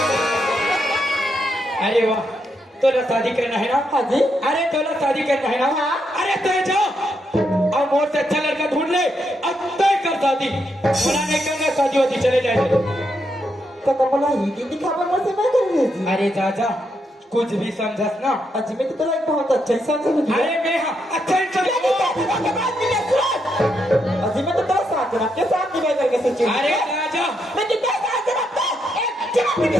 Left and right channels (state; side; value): normal; both; correlation 0.80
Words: अरे वाह, तोला शादी करना है ना? हाँ जी। अरे तोला शादी करना है ना? हाँ। अरे तो जाओ और मोर से अच्छा लड़का ढूंढ ले, अब तय कर शादी। बोला नहीं करना शादी वादी, चले जाएंगे। तो बोला ही दिन दिखावा मुझसे मैं कर रही थी। अरे चाचा कुछ भी समझस ना। अजी में तो तोरा एक बहुत अच्छा इंसान समझ लिया। अरे मैं हाँ अच्छा इंसान। अजी में तो तेरा साथ जनाब के साथ निभाई करके सोची। अरे चाचा लेकिन तेरा साथ जनाब को एक जनाब के